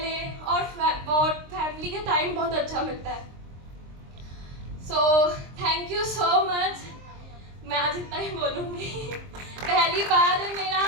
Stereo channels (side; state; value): left; late; 23 ms